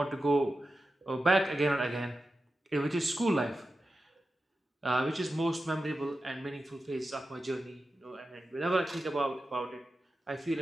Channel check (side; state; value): both; normal; correlation 0.92